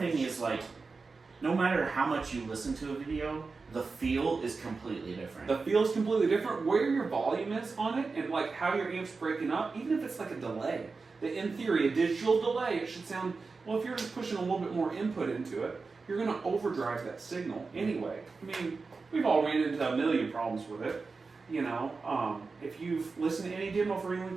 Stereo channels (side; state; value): left; quieter; 4.3 dB